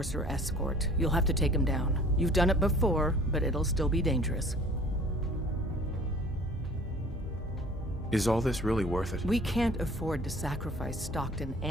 escort. You'll have to take them down. You've done it before, but it'll still be dangerous. Is all this really worth it? We can't afford to sacrifice Stockton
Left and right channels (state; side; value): normal; both; correlation 0.49